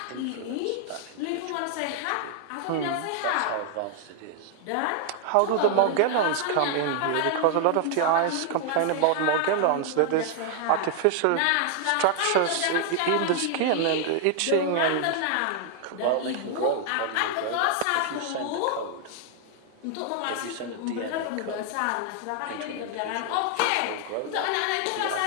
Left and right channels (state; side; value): different; both; correlation 0.00